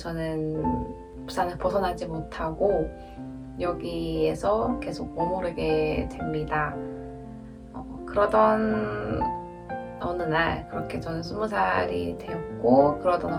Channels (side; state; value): both; identical; correlation 1.00